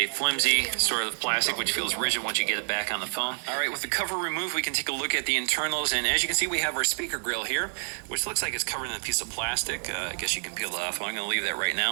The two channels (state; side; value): silent; left; digital silence